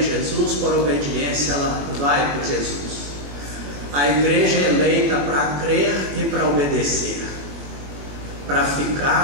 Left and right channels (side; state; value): left; late; 22 ms